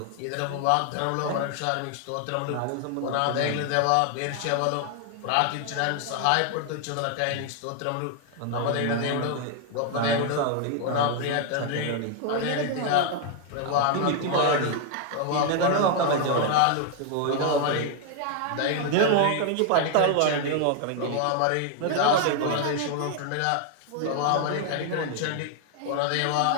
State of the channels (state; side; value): different; both; correlation 0.00